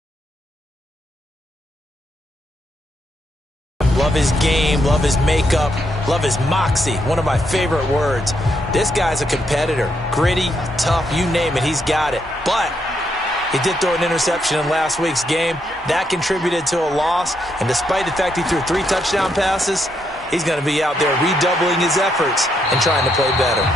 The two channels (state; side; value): normal; both; correlation 0.78